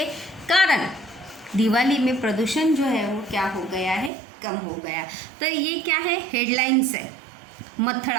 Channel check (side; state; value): left; drops out; at 4.1 s